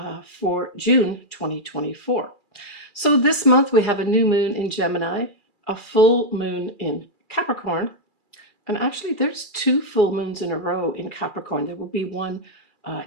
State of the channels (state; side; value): late; left; 2.4 ms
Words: for June 2024. So this month we have a new moon in Gemini, a full moon in Capricorn, and actually there's 2 full moons in a row in Capricorn. There will be one